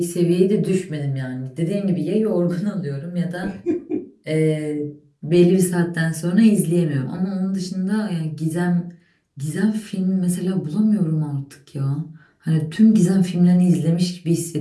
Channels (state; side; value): identical; both; correlation 1.00